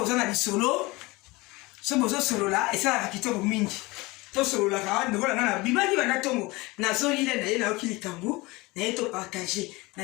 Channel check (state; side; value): quieter; right; 22.9 dB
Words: lisolo so bozo solola esalaka kitoko mingi to solola ka ndeko na bimaki bana tongo na zoli ile na ye na okili kambu na ye to partager